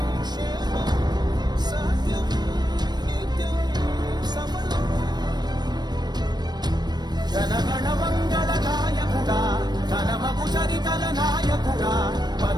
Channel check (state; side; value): late; left; 0.20 ms